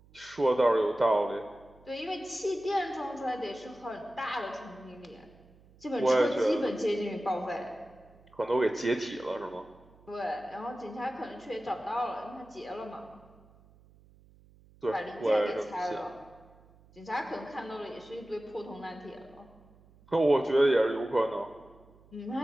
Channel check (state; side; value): noise; right; hum, 27 dB below the sound